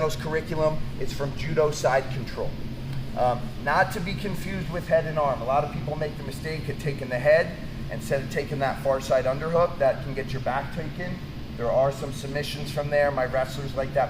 curriculum is from Judo side control. Not to be confused with head and arm. A lot of people make the mistake of taking the head instead of taking that far side underhook. That can get your back taken. There are some submissions from there. My wrestlers like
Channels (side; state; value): both; identical; correlation 1.00